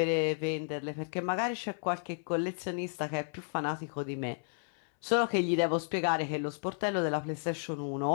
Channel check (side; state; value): right; silent; 56 dB below the other